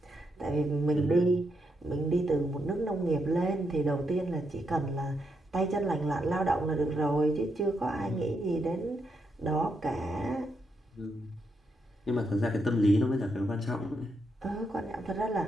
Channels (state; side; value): normal; both; correlation 0.81